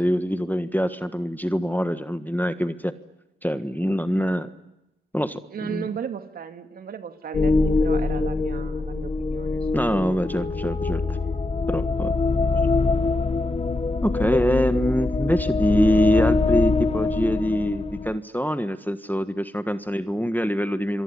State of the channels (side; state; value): both; normal; correlation 0.88